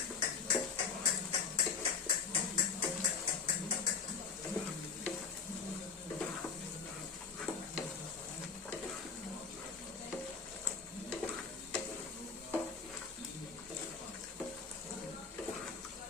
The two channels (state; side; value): quieter; right; 5.6 dB